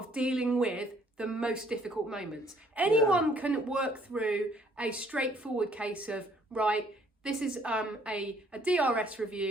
dealing with the most difficult moments. Anyone can work through a straightforward case of, right, this is a DRS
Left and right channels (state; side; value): normal; both; correlation 0.63